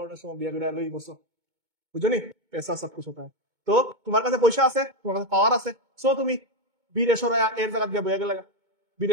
সময় বিয়া করে লই বসো, বুঝছো নি? পেশা সব কিছু পায়। তো তোমার কাছে পয়সা আছে, তোমার কাছে পাওয়ার আছে, সো তুমি বীরে সরাইয়া এর জায়গা দিয়ে বয়ে গেলে,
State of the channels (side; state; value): left; late; 2.2 ms